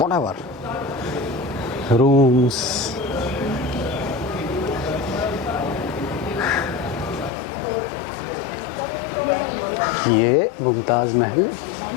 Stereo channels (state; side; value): drops out; right; at 7.3 s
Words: रूम्स। ये मुमताज़ महल